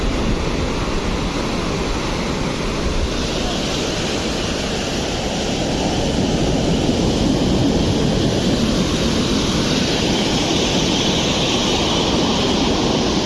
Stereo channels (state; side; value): identical; both; correlation 1.00